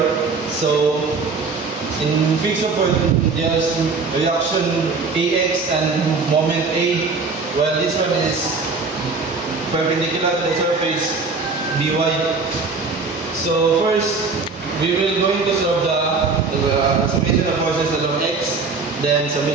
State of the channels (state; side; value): quieter; left; 4.3 dB